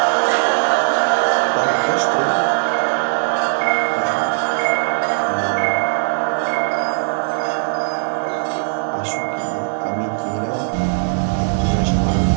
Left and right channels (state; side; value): silent; left; digital silence